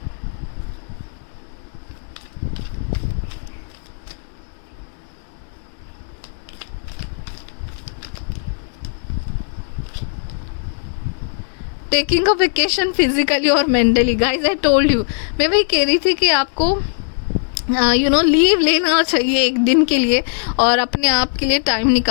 टेकिंग अ वेकेशन फिजिकली और mentally, guys I told you, मैं वही कह रही थी कि आपको यू नो लीव लेना चाहिए एक दिन के लिए, और अपने आप के लिए टाइम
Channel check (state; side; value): silent; right; digital silence